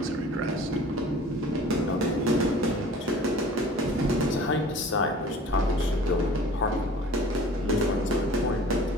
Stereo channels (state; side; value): normal; both; correlation 0.45